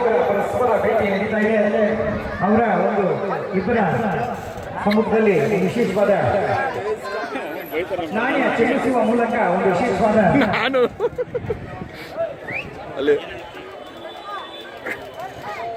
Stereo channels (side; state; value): both; identical; correlation 1.00